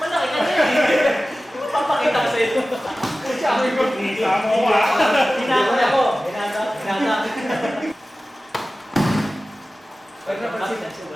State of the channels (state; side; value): normal; both; correlation 0.96